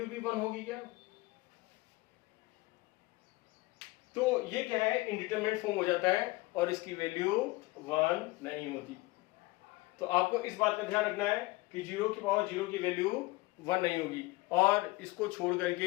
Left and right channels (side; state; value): right; quieter; 21.7 dB